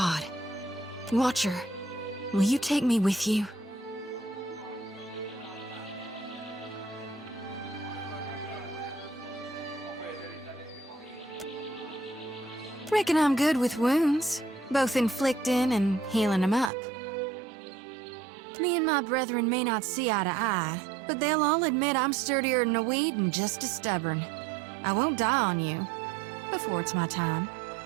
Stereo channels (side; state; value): left; drops out; at 16.7 s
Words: Watcher, will you take me with you? Reckon I'm good with wounds, both inflicting and healing them up. Me and my brethren may not see eye to eye, but they'll all admit I'm sturdier than a weed and just as stubborn. I won't die on you, before it's my time.